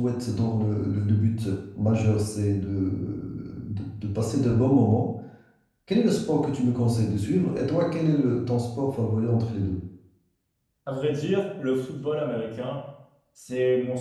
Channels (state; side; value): identical; both; correlation 1.00